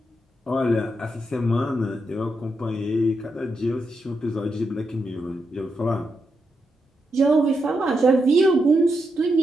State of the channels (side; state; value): both; normal; correlation 0.84